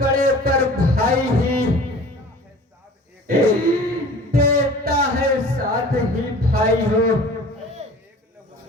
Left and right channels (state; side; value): normal; both; correlation 0.44